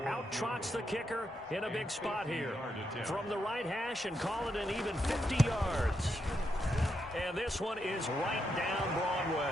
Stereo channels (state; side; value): normal; both; correlation 0.82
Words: out trots the kicker in a big spot here. From the right hash and call it an even 50 yards. And this one is right down